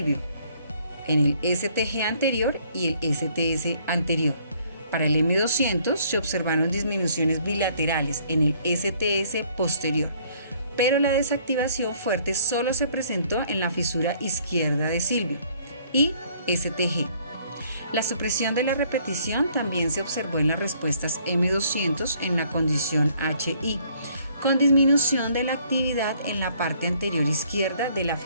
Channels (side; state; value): both; inverted; correlation -0.62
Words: en el STG anterior y el STS anterior, Para el M200 se observaron disminuciones bilaterales en el STS posterior, pero la desactivación fuerte solo se presentó en la fisura izquierda de Silvio y STG. La supresión de la repetición también se observó en las respuestas M200 en la condición HI, con disminución de la actividad en la parte anterior izquierda de la